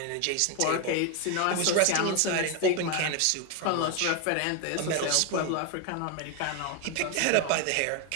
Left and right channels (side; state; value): both; different; correlation 0.01